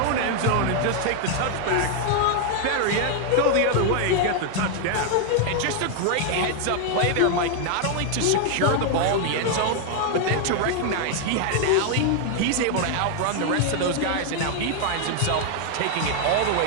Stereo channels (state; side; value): different; both; correlation 0.00